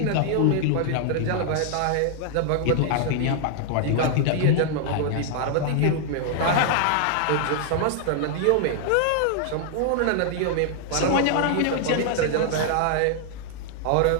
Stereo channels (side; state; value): both; different; correlation 0.00